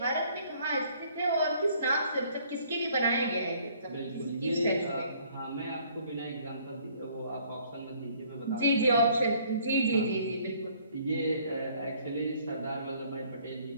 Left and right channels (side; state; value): both; inverted; correlation -0.60